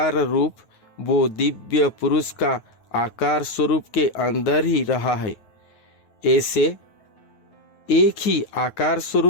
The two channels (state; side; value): late; right; 9.3 ms